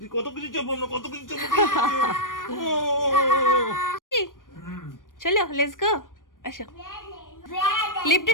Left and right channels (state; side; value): late; right; 0.90 ms